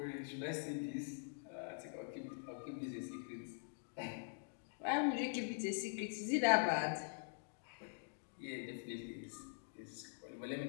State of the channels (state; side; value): silent; right; digital silence